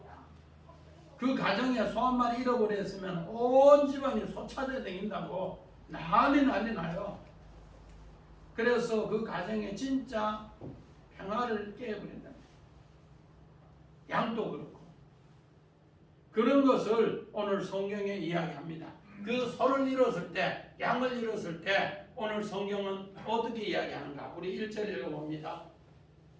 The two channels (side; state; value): both; identical; correlation 1.00